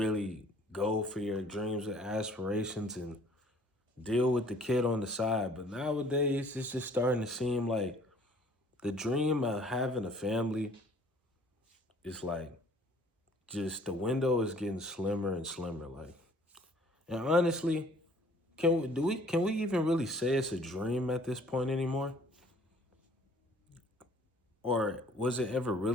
go for your dreams and aspirations and deal with the kid on the side. But nowadays, it's just starting to seem like the dream of having a family is like just the window is getting slimmer and slimmer. Like, and honestly, can we even really say it's a dream at this point anymore? Or was it ever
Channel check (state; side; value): normal; both; correlation 0.56